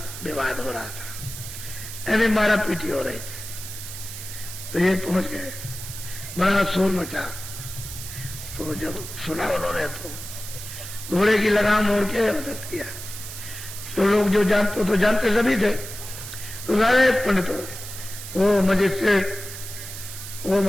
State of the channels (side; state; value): right; noise; hiss, 10 dB below the sound